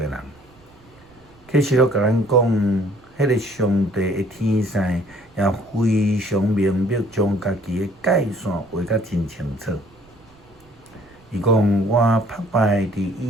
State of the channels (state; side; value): noise; right; rumble, 28 dB below the sound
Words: 人。启示录甲咱讲，迄个上帝的天使也非常明白，将家己的界线画甲真清楚。伊讲我拍拜伫